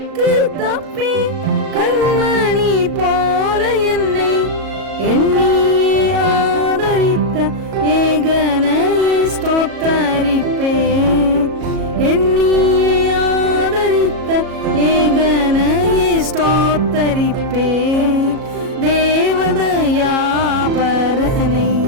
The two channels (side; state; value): left; late; 37 ms